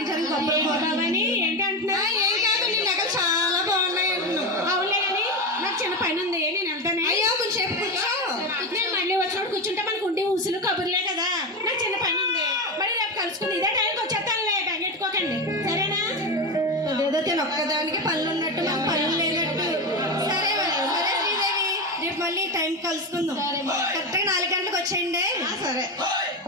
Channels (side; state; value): both; normal; correlation 0.17